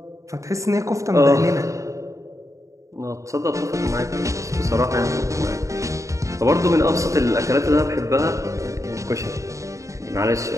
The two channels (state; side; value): late; left; 0.15 ms